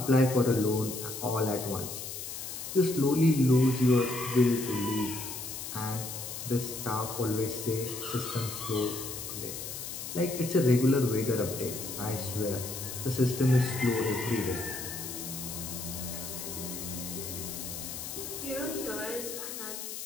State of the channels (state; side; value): noise; left; hiss, 7 dB below the sound